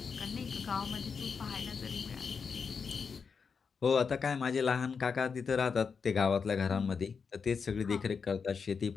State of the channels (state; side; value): quieter; right; 5.7 dB